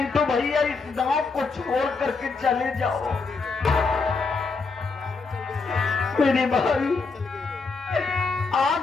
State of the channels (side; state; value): right; quieter; 4.4 dB